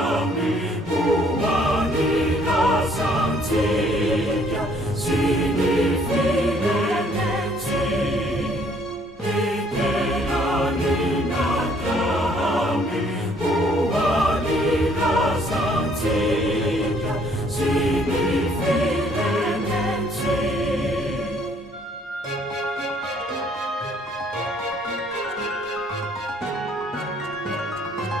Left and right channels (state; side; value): normal; both; correlation 0.63